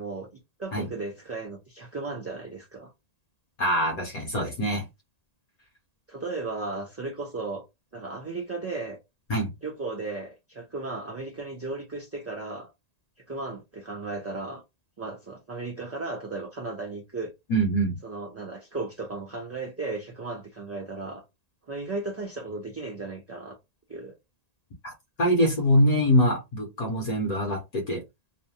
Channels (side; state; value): right; late; 1.8 ms